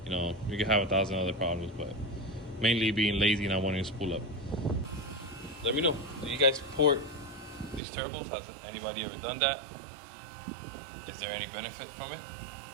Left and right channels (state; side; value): drops out; left; at 7.8 s